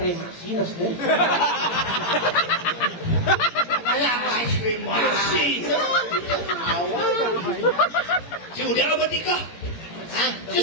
kremasi nas deh. Kayak ice cream masih. Si udah apa tika?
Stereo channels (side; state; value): right; late; 18 ms